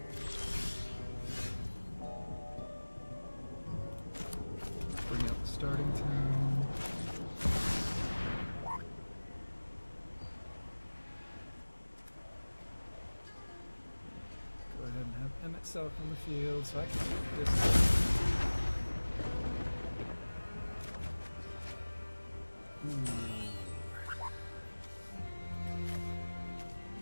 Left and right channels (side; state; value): both; inverted; correlation -1.00